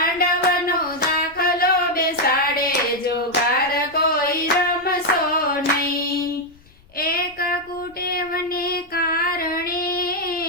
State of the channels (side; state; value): left; noise; rumble, 27 dB below the sound